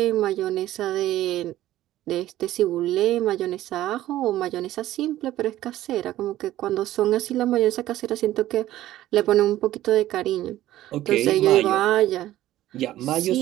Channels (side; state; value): left; quieter; 14.4 dB